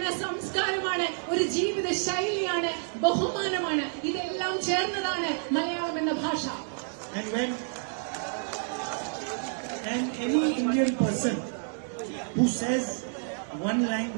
സംസ്കാരമാണ്, ഒരു ജീവിത ശൈലിയാണ്, ബഹുമാനമാണ്. ഇതെല്ലാം ചേർന്നതാണ് മലയാളം എന്ന ഭാഷ. And any Indian person who says one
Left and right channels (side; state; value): left; silent; digital silence